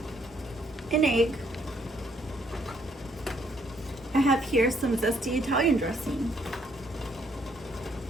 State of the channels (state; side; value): normal; both; correlation 0.69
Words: An egg. I have here some zesty Italian dressing,